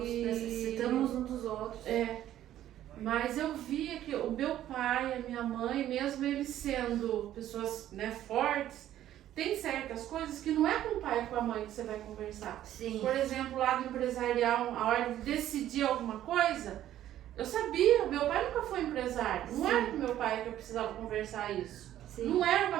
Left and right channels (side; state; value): left; quieter; 12.4 dB